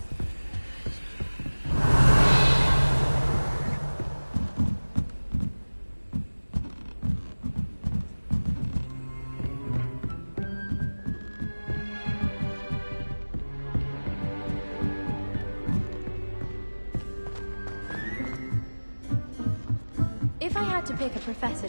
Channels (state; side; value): inverted; both; correlation -1.00